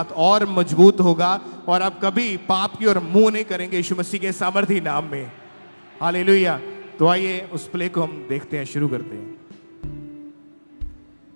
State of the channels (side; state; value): both; inverted; correlation -1.00